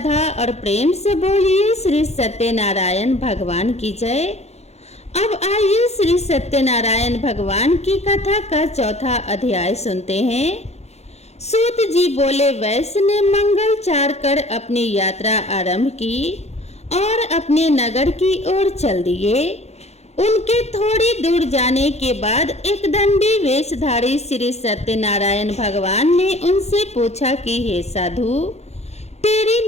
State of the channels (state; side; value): late; right; 0.31 ms